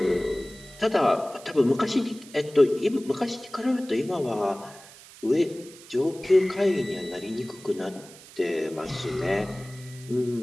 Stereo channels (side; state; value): right; noise; hiss, 20 dB below the sound